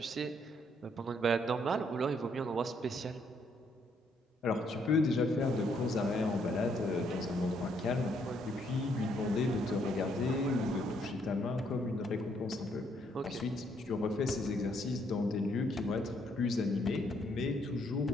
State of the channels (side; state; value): both; normal; correlation 0.71